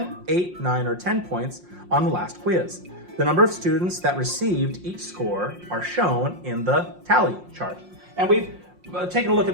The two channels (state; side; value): late; left; 5.6 ms